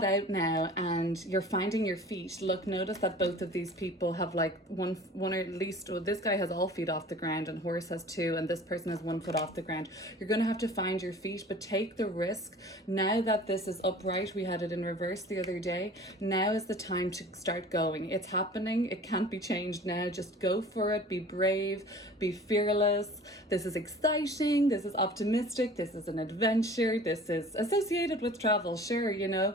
out now and you're finding your feet. Look, notice that both of these people have like one or at least, well, this guy has all feet off the ground and horse has 2, and this person has 1 foot off the ground. You're going to have to find your feet, but take the risk. Now that this is upright, we had it in reverse the other day. Now is the time to start going. It's happening. It can't be changed now. Just go for it. Be brave. Be fearless. This is exciting. This is optimistic. This is an adventure. This is associated with travel. Sure, you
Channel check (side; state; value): both; normal; correlation 0.44